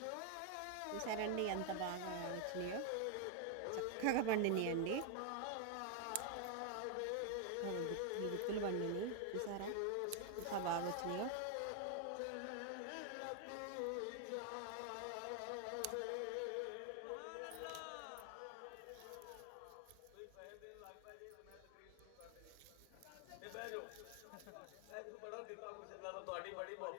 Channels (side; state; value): both; different; correlation 0.00